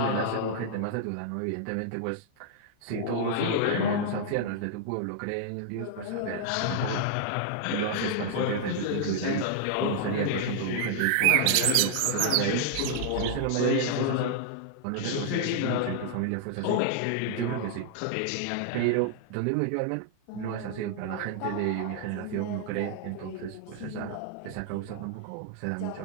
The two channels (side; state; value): both; different; correlation -0.01